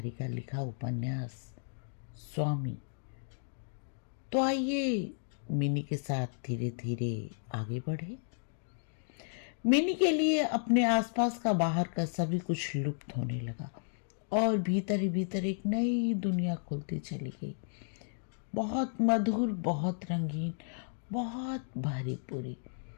का लिखा उपन्यास स्वामी। तो आइए मिनी के साथ धीरे धीरे आगे बढ़े। मिनी के लिए अपने आसपास का बाहर का सभी कुछ लुप्त होने लगा और भीतर ही भीतर एक नई दुनिया खुलती चली गई। बहुत मधुर, बहुत रंगीन, बहुत भरी पूरी।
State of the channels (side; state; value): right; silent; digital silence